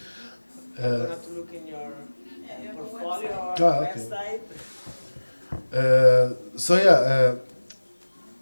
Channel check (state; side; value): inverted; both; correlation -1.00